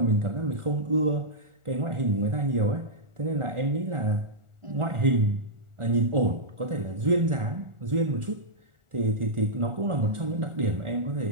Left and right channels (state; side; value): late; left; 1.4 ms